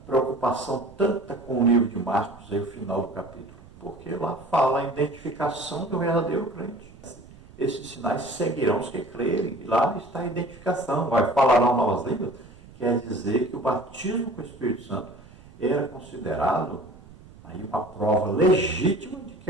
preocupação tanta com o livro de Marcos, aí o final do capítulo? Porque lá fala a identificação do verdadeiro crente. Esses sinais seguirão os que crerem. E lá está a identificação. Vai falar novas línguas, quer dizer que o batismo com o Espírito Santo era considerado aí uma prova legítima de que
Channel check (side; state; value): right; noise; rumble, 21 dB below the sound